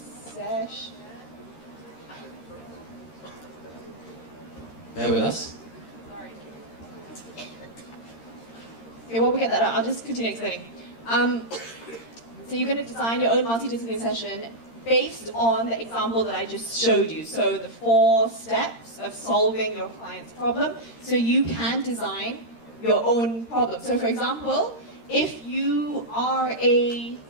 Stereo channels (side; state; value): right; late; 13 ms